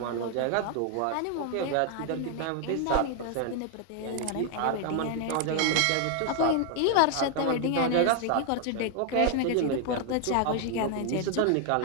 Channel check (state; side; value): different; both; correlation 0.00